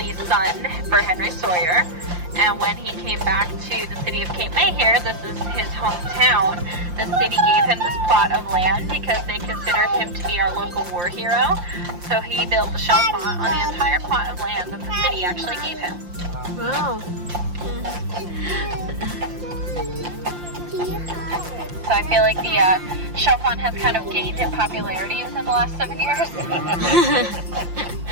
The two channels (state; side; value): late; left; 5.7 ms